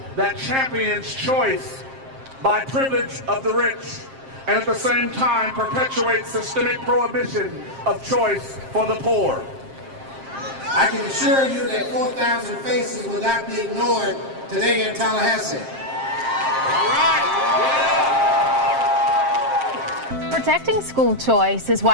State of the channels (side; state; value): left; late; 7.5 ms